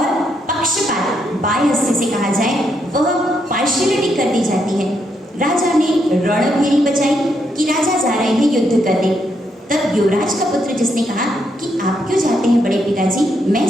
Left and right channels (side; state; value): both; normal; correlation 0.78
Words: पक्षपात, बायस जिसे कहा जाए, वह पार्शियलिटी कर दी जाती है। राजा ने रणभेरी बचाई कि राजा जा रहे हैं युद्ध करने। तब युवराज का पुत्र जिसने कहा कि आप क्यों जाते हैं बड़े पिताजी, मैं